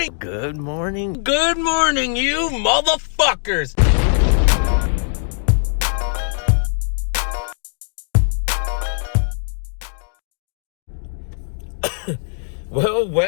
good morning, good morning, you motherfuckers.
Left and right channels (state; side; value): silent; right; digital silence